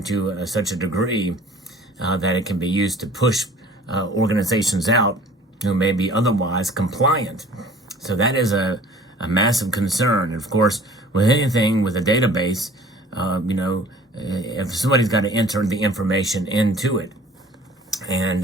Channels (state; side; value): normal; both; correlation 0.49